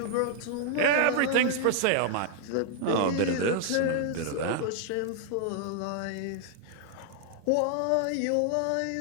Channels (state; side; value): different; both; correlation 0.00